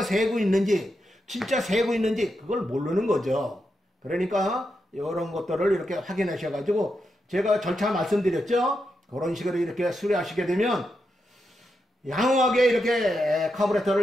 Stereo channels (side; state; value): both; normal; correlation 0.85